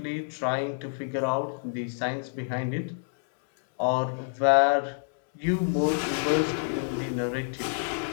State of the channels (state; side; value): silent; right; 60 dB below the other